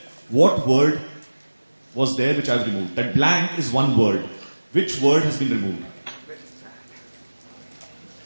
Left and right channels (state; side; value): inverted; both; correlation -1.00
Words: What word was there which I have removed? That blank is one word. Which word has been removed?